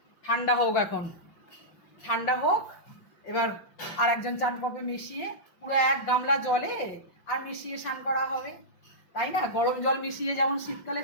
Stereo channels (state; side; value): late; right; 5.6 ms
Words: ঠান্ডা হোক, এখন ঠান্ডা হোক। এবার আর একজন চান করবে মিশিয়ে, পুরো 1 গামলা জলে আর মিশিয়ে স্নান করা হবে, তাই না? গরম জল মিশিয়ে যেমন শীতকালে